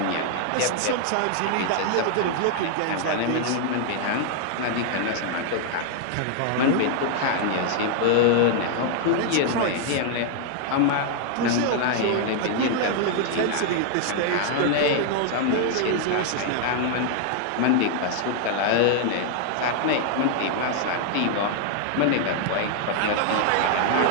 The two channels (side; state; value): both; different; correlation 0.00